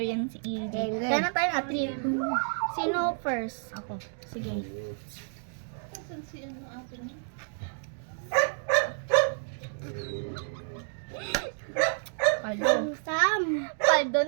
yan si EJ. Hindi. Kaya na tayo nga, three. Sino first? Ako. Sige. Paldo. Sam. Paldo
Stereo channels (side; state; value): left; silent; digital silence